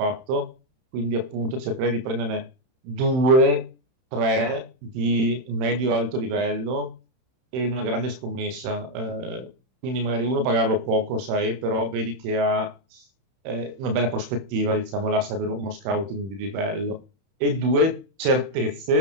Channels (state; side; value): late; left; 31 ms